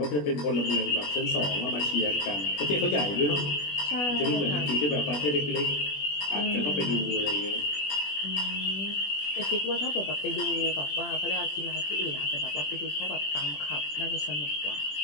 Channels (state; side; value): late; right; 20 ms